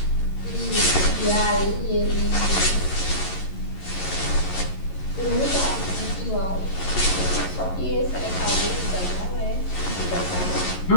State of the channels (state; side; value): late; right; 11 ms